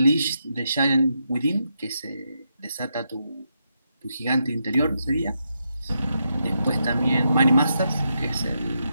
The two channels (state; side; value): inverted; both; correlation -0.83